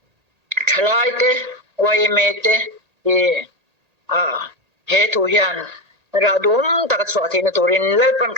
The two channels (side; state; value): left; late; 1.8 ms